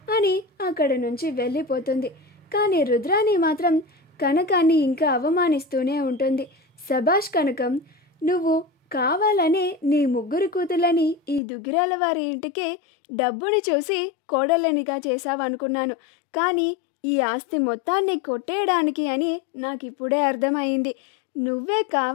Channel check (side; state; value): right; drops out; at 11.4 s